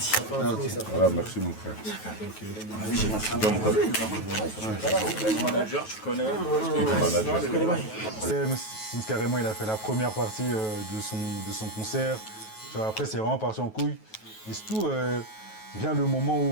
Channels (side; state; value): right; late; 9.3 ms